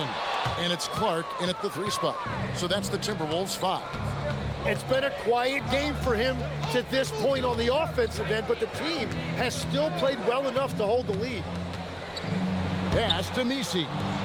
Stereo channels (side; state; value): both; identical; correlation 1.00